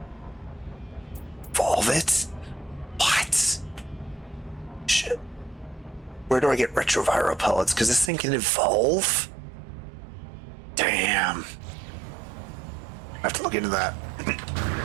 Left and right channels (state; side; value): drops out; left; at 8.1 s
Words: Evolve it? What? Shit. Where do I get retroviral pellets? Because this thing can evolve? Damn. I have to look into that.